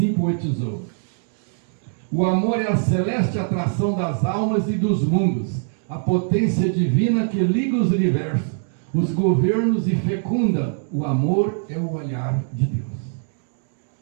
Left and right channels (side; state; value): left; silent; 64 dB below the other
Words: poetizou. O amor é a celeste atração das almas e dos mundos, a potência divina que liga os universos, os governos e fecunda. O amor é o olhar de Deus.